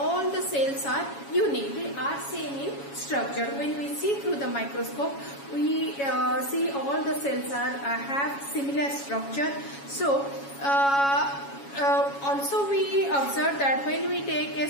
the cells are unique. They are same in structure. When we see through the microscope, we see all the cells have similar structure. So also we observe that when we take a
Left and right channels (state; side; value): late; right; 7.2 ms